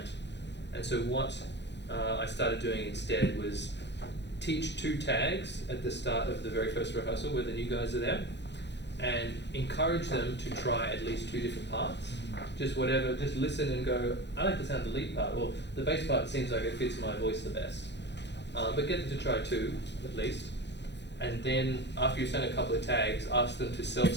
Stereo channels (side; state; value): right; late; 0.51 ms